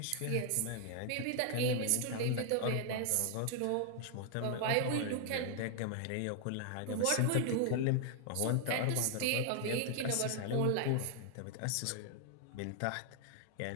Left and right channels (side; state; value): both; different; correlation 0.00